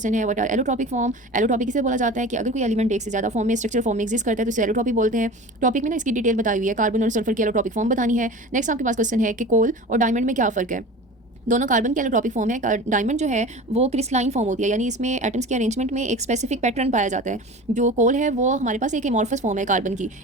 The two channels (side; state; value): both; normal; correlation 0.35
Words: है what are allotropic form. Allotropic इसे बोला जाता है कि अगर कोई एलिमेंट एक से ज़्यादा फॉर्म में स्ट्रक्चर फॉर्म में एग्जिस्ट करता है तो इसे एलोट्रॉपिक बोलते हैं। टॉपिक में ना इसकी डिटेल बताई हुई है, कार्बन और सल्फर की एलोट्रॉपिक फॉर्म बतानी है। नेक्स्ट आपके पास क्वेश्चन है कि कोल और डायमंड में क्या फ़र्क है। दोनों कार्बन की एलोट्रॉपिक फॉर्म है। डायमंड जो है वो क्रिस्टलाइन फॉर्म होती है, यानी इसमें एटम्स के अरेंजमेंट में एक स्पेसिफिक पैटर्न पाया जाता है। जो कोल है वो हमारे पास एक एमॉर्फस फॉर्म है कार्बन की,